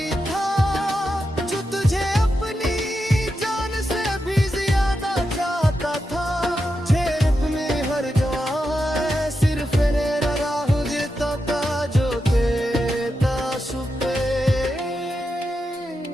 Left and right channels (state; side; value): normal; both; correlation 0.87